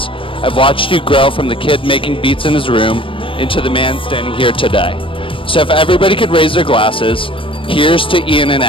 I've watched you grow from the kid making beats in his room into the man standing here today. So if everybody could raise their glasses, here's to Ian and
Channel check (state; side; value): late; right; 0.25 ms